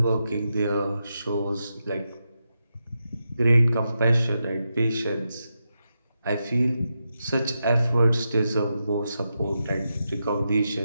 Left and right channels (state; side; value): inverted; both; correlation -0.87